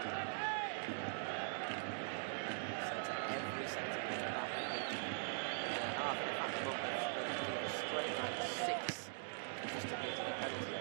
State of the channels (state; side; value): silent; left; digital silence